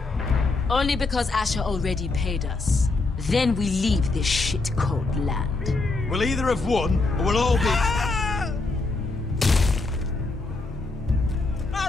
Only because Asher already paid us. Then we leave this shit-cold land. We'll either have won, or we'll all be...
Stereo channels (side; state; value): right; quieter; 3.5 dB